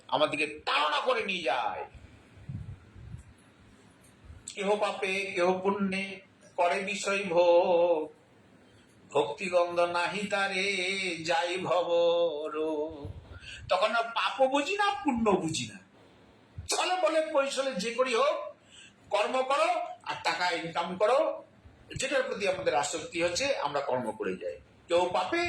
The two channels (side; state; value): both; identical; correlation 1.00